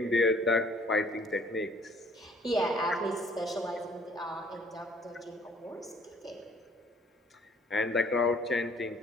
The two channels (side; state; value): both; normal; correlation 0.58